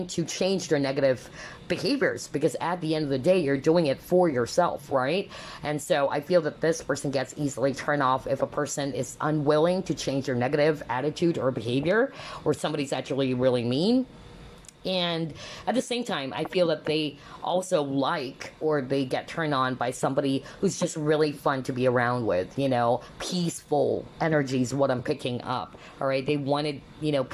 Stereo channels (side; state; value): both; identical; correlation 1.00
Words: to change their negative behaviors, because at the end of the day, you're doing it for yourself, right? And so I feel that this person gets easily turned off if a person is unwilling to change their negative attitude or behavior, or somebody's actually really mean. And at the same time, I feel that they also like, or they get turned on by somebody who's just really fun to be around with, you know, peaceful energy is what I'm picking up, all right? They wanted, you know,